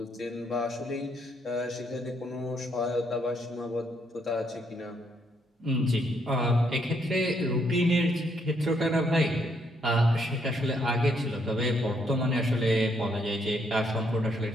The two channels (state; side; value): normal; both; correlation 0.73